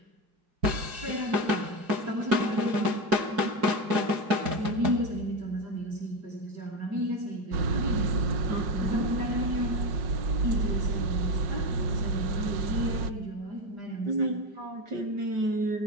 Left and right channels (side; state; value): left; late; 4.8 ms